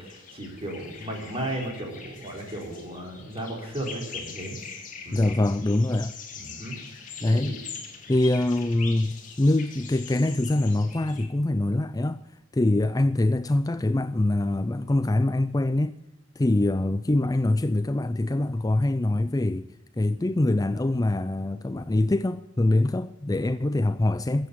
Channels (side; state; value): both; normal; correlation 0.92